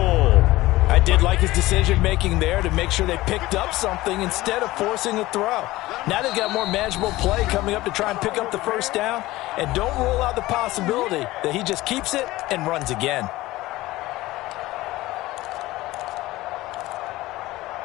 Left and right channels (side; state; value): right; quieter; 18.1 dB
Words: I did like his decision-making there to make sure they picked up something instead of forcing a throw. Now they've got more manageable play coming up to try and pick up the first down, and don't rule out the possibility that he just keeps it and runs again.